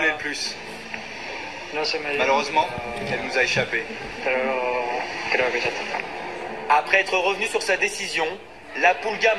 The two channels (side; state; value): both; identical; correlation 1.00